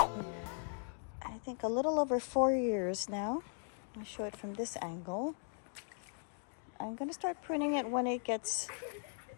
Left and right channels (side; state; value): right; silent; 52 dB below the other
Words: I think a little over 4 years now. I'll show it from this angle. I'm gonna start pruning it when it gets